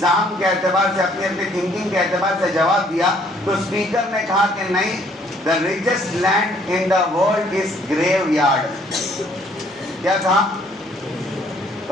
के एतबार से, अपनी अपनी थिंकिंग के एतबार से जवाब दिया, तो स्पीकर ने कहा कि नहीं, the richest land in the world is graveyard. क्या कहा?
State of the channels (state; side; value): normal; both; correlation 0.63